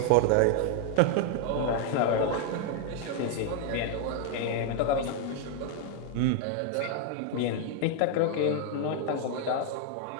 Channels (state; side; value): different; both; correlation 0.00